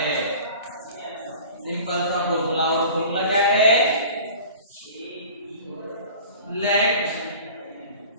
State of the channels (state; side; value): inverted; both; correlation -0.42